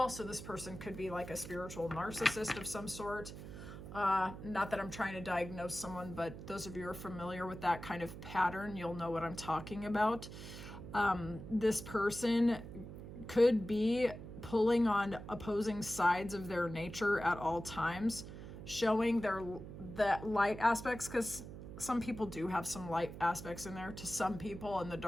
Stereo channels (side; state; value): right; noise; hum, 11 dB below the sound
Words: So this person could be like a spiritual narcissist of some sort. Not that I'm trying to diagnose someone, but those of you who are familiar with that kind of pattern, you'll know what I'm talking about. This person could be pulling on opposing sides of their nature at all times, showing the light aspects, because some people do have some light aspects in there to some people and the